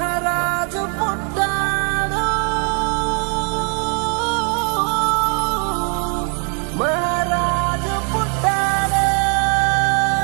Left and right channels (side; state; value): left; quieter; 38.9 dB